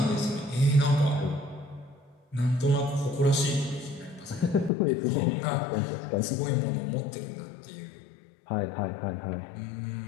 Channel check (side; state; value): right; drops out; at 4.7 s